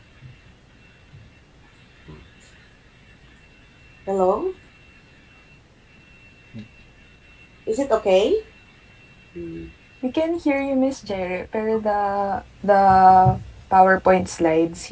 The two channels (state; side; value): identical; both; correlation 1.00